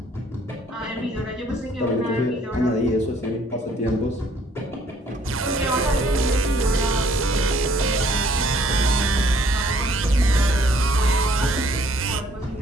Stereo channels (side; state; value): both; normal; correlation 0.61